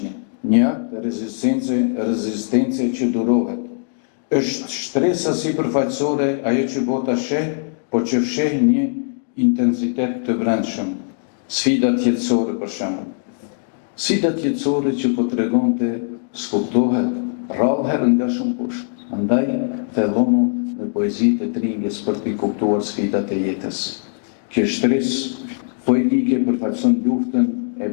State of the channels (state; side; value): silent; right; digital silence